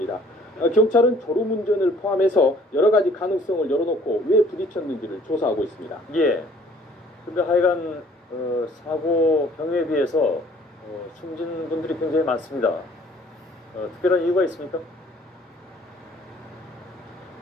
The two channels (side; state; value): both; normal; correlation 0.57